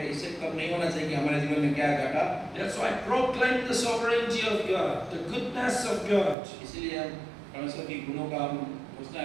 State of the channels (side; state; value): left; drops out; at 6.4 s